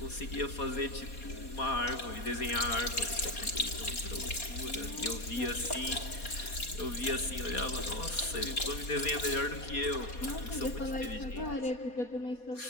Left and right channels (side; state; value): right; late; 4.2 ms